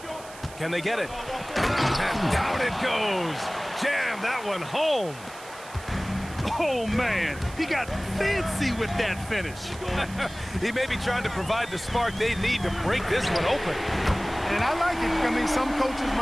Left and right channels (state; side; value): noise; right; hiss, 18 dB below the sound